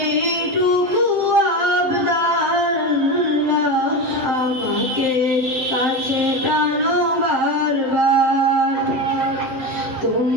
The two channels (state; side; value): late; left; 7.7 ms